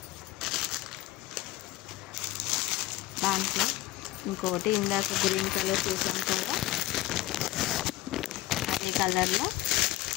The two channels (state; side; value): quieter; right; 16.1 dB